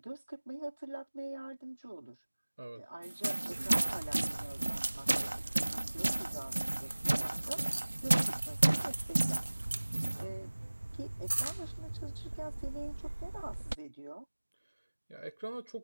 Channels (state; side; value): inverted; both; correlation -1.00